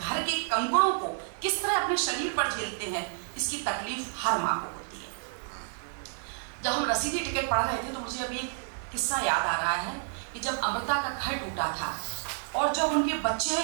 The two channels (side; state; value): left; silent; digital silence